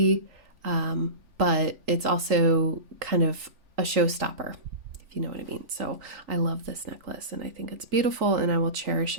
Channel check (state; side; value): late; left; 3.5 ms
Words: but it's also kind of a showstopper, if you know what I mean. So I love this necklace, and I think it's beautiful, and I will cherish